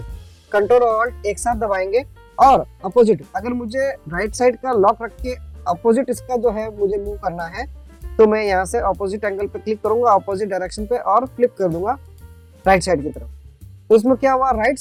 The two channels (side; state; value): both; identical; correlation 1.00